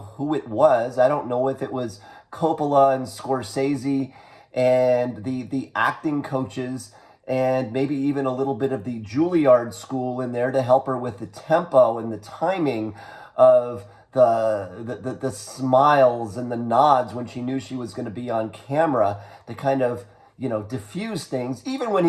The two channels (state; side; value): identical; both; correlation 1.00